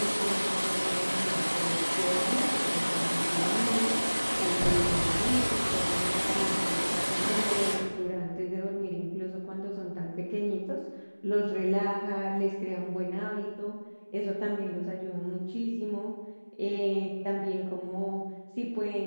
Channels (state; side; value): inverted; both; correlation -1.00